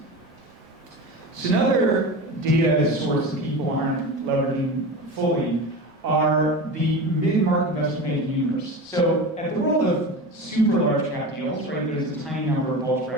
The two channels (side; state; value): both; normal; correlation 0.28